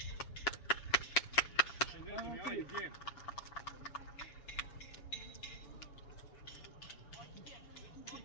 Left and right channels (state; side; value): late; right; 7.1 ms